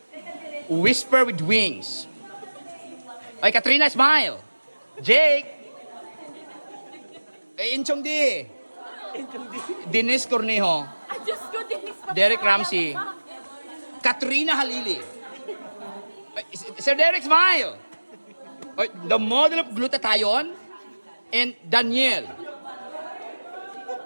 Whisper with Wings. Ay, Katrina, smile. Jake. Inchong D. Dennis Cornejo. Derek Ramsey. Katrina Halili. Sir Derek, smile. Oy, the model of glutathione and Daniel.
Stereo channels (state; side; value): inverted; both; correlation -1.00